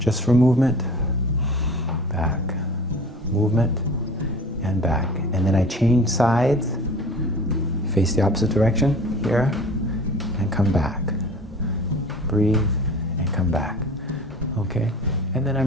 for movement, back, movement, and back. And then I change sides, face the opposite direction, here, and come back. Breathe, and come back. Okay? And then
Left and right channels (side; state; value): both; normal; correlation 0.42